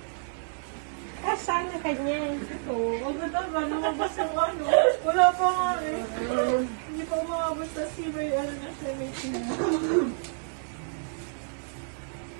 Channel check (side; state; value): left; silent; 59 dB below the other